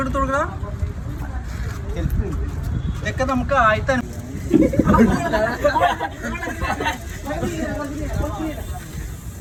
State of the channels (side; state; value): both; identical; correlation 1.00